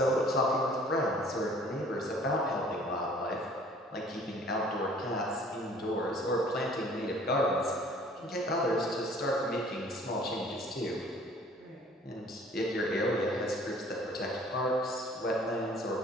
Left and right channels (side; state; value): both; normal; correlation 0.53